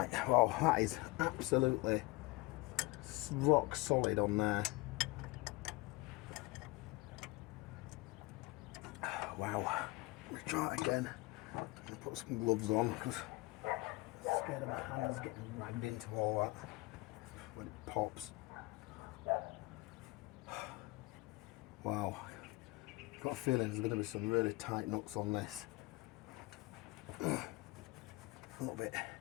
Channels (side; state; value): right; quieter; 22.2 dB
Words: well, that is absolutely rock solid on there. Wow. Let's try it again. I'm going to put some gloves on because I'm scared of my hands getting ragged into all that when it pops. Wow. I've got a feeling there's going to be some really tight nuts on this. A little bit.